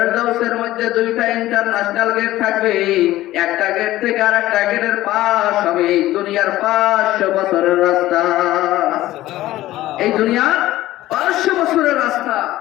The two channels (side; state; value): right; quieter; 15.7 dB